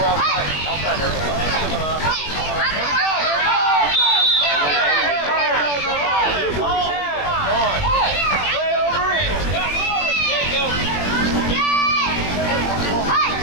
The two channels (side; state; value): right; late; 21 ms